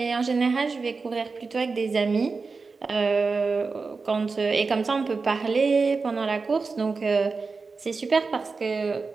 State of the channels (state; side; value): quieter; left; 4.4 dB